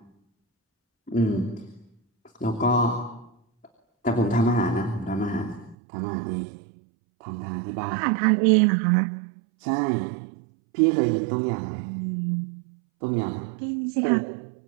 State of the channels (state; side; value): drops out; left; at 5.8 s